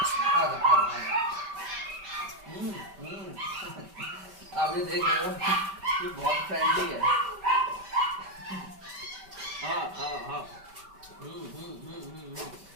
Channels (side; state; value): left; late; 5.2 ms